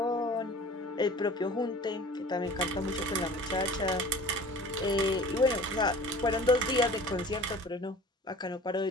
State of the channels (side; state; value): both; normal; correlation 0.43